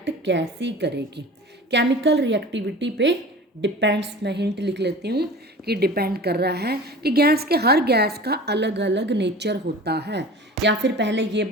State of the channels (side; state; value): both; normal; correlation 0.38